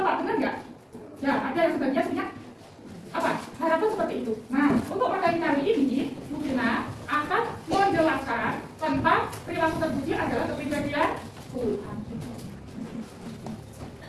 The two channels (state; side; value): identical; both; correlation 1.00